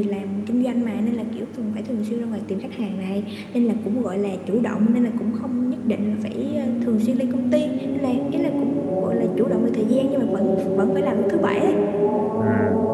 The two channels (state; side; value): identical; both; correlation 1.00